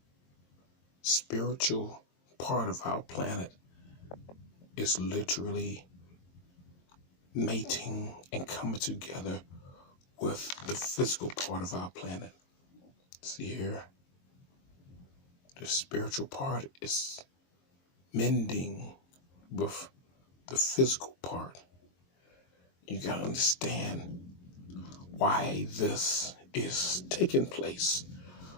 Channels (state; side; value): late; right; 22 ms